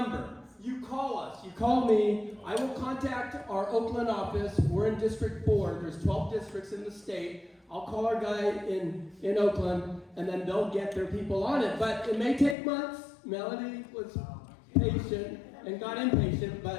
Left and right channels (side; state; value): right; drops out; at 12.6 s